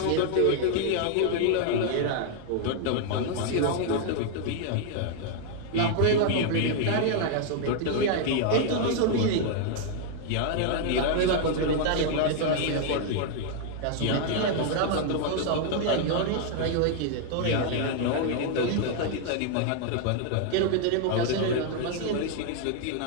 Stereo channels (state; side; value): different; both; correlation 0.00